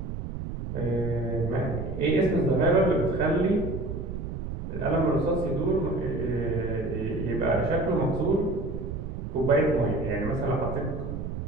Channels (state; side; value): noise; right; rumble, 6 dB below the sound